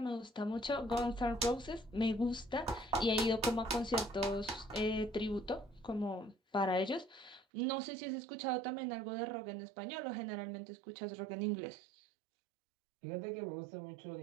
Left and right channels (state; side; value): drops out; left; at 7.5 s